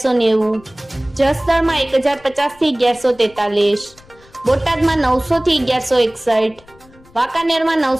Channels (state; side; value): noise; left; rumble, 27 dB below the sound